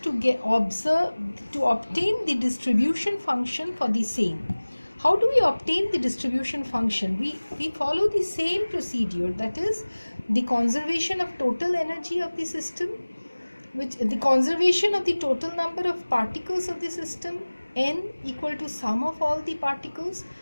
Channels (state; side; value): inverted; both; correlation -1.00